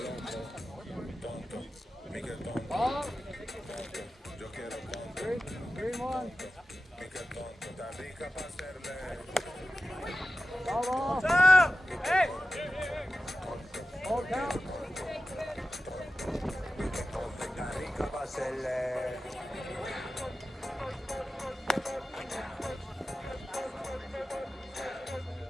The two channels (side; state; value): both; normal; correlation 0.93